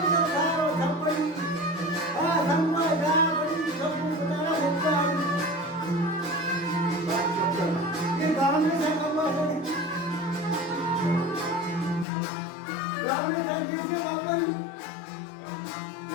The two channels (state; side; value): drops out; right; at 12.1 s